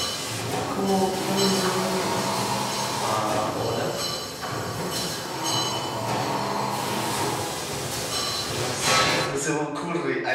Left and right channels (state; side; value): identical; both; correlation 1.00